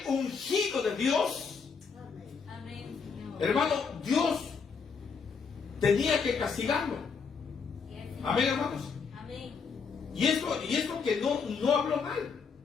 ungido de Dios, Amén, Señor. hermano, Dios tenía que castigarlo. Sí, Señor. Amén, hermanos. Amén. Y esto que no habló mal,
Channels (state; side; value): quieter; right; 5.6 dB